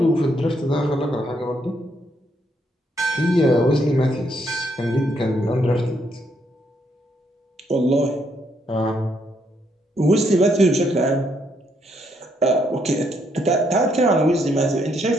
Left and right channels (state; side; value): normal; both; correlation 0.74